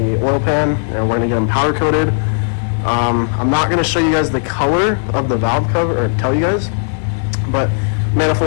oil pan, and we're going to get them powder coated. I'm not going to show you guys the color of the valve cover, or tell you guys, but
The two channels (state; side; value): silent; right; digital silence